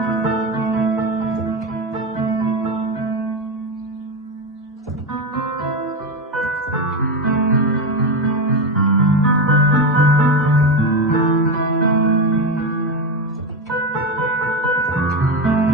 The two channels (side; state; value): both; normal; correlation 0.14